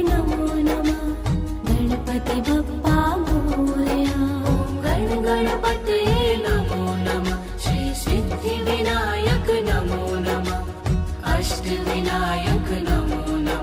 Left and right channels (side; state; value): both; identical; correlation 1.00